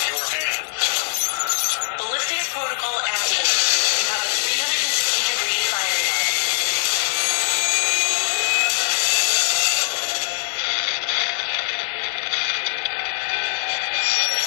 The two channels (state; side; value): silent; right; 64 dB below the other